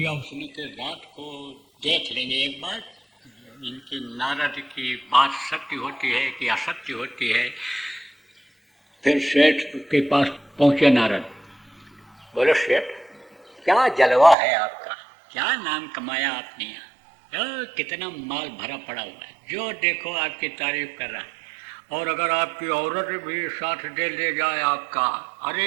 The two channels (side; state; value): left; drops out; at 14.4 s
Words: उसने कि रात को देख लेंगे एक बार, इनकी नारद की बात सत्य होती है कि असत्य होती है। फिर सेठ के पास पहुंचे नारद, बोले सेठ क्या जलवा है आपका, क्या नाम कमाया आपने यहाँ, कितना माल भरा पड़ा हुआ है, जो देखो आपकी तारीफ कर रहा है। और अगर आपकी औरत भी साथ दे ले जाए आपका,